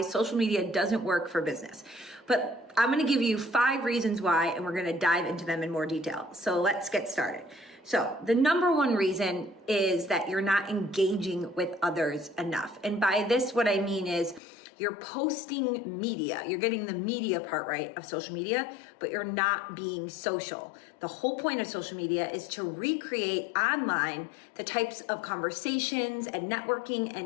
social media doesn't work for business. But I'm going to give you 5 reasons why, and we're going to dive into them in more detail. So let's get started. So the number one reason is that you're not engaging with others enough. And by this, what I mean is you're posting media. You're getting the media part right of social media, but you're not being social. The whole point of social media is to recreate online the types of conversations and networking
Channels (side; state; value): right; drops out; at 14.4 s